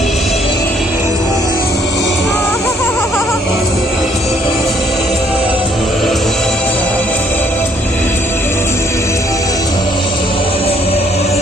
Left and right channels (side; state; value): both; normal; correlation 0.65